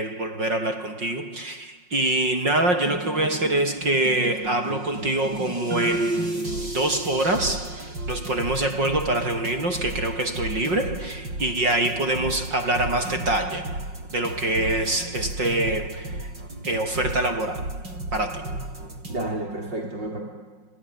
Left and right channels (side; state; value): left; late; 5.5 ms